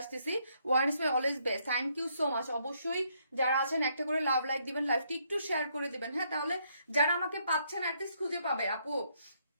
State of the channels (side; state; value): both; inverted; correlation -0.72